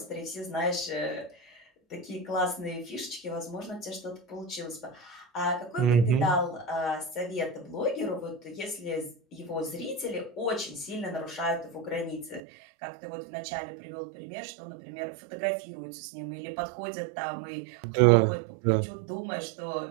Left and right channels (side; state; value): left; drops out; at 12.4 s